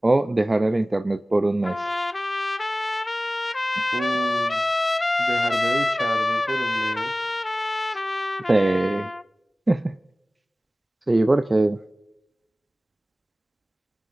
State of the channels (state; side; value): normal; both; correlation 0.97